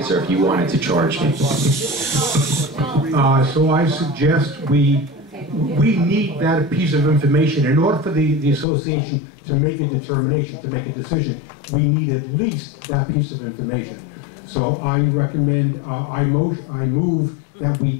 if you wanted to charge me. So I suggest we need that piece of information. In order for the association to make a determination, to make a decision, we need at least that piece of information. So I recommend, I move that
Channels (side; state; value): right; drops out; at 8.7 s